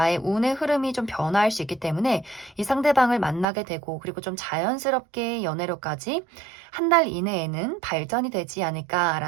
운의 흐름이 좀 변화할 수 있기 때문에 이 상대방을 만나게 되고, 그리고 좀 자연스럽게 연애로까지 한 달 이내에는 발전이 되지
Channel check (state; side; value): drops out; left; at 3.5 s